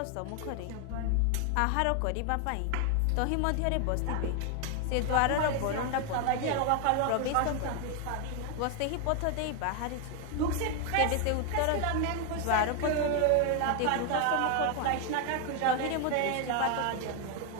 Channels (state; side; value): different; both; correlation 0.01